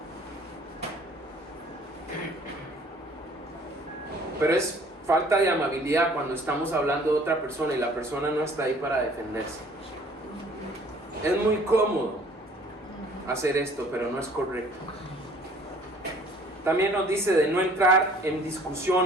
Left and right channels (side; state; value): both; normal; correlation 0.55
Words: Pero es falta de amabilidad cuando estamos hablando de otra persona y la persona no está ahí para defenderse. Es muy cómodo hacer esto, pero no es correcto. También nos dice de no entrar en